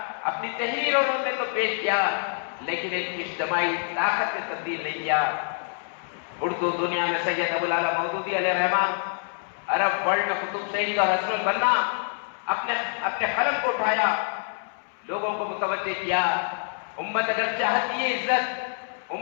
اپنی تحریروں میں تو پیش کیا لیکن ایک اجتماعی طاقت میں تبدیل نہیں کیا۔ اردو دنیا میں سید ابو الاعلیٰ مودودی علیہ الرحمہ عرب ورلڈ میں قطب شہید اور حسن البنا اپنے قلم کو اٹھایا، لوگوں کو متوجہ کیا۔ امت اگر چاہتی ہے عزت،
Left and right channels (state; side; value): silent; right; 61 dB below the other